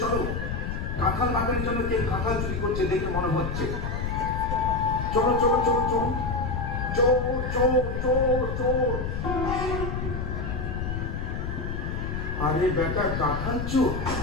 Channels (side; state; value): left; noise; rumble, 3 dB below the sound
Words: চলো, কাঁঠাল বাগানের জন্য কে কাঁঠাল চুরি করছে দেখে মনে হচ্ছে। চলো চলো চলো চলো, চোর চোর চোর চোর। আরে বেটা, কাঁঠাল চোর